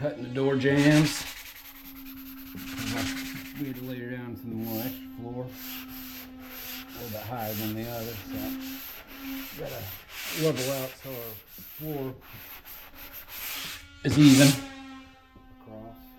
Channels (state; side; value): identical; both; correlation 1.00